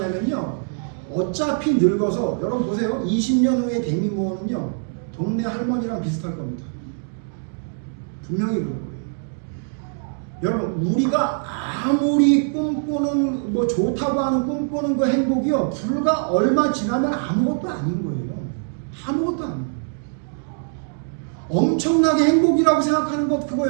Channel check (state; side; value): silent; left; 64 dB below the other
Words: 어차피 늙어서, 여러분 보세요. 20년 후에 데미 무어는요 동네 할머니랑 비슷할 겁니다. 분명히 그럴 거예요. 여러분, 우리가 아무리 꿈꾸는 뭐 좋다고 하는 꿈꾸는 그 행복이요, 불과 얼마 지나면 아무것도 아닌 거예요. 아무것도 아니에요. 엄청나게 행복이라고 생각하는 것, 그거